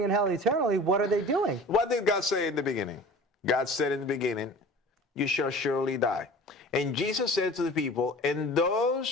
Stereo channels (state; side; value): normal; both; correlation 0.41